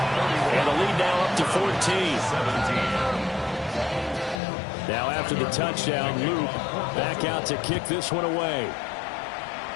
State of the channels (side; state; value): right; drops out; at 4.4 s